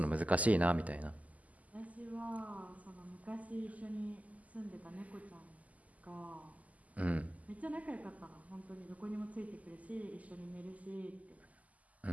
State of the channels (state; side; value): late; left; 0.074 ms